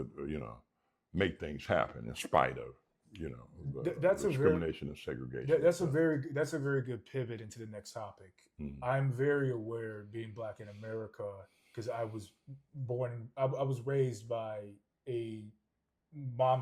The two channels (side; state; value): both; identical; correlation 1.00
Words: make things happen in spite of, that's discrimination and segregation. That's a very good pivot into the next topic. I'm very aware, being black in America, because I was raised by a